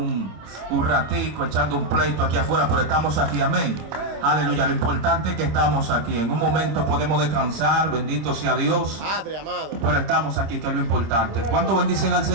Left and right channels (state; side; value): late; left; 26 ms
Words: ratico echando un pleito aquí afuera, pero estamos aquí. Amén. Aleluya. Lo importante es que estamos aquí. En un momento podemos descansar. Bendito sea Dios. Padre amado. Pero estamos aquí, que es lo importante. ¿Cuánto bendicen al